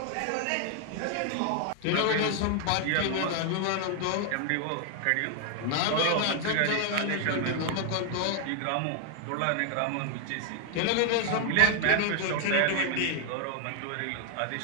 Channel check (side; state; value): both; different; correlation 0.00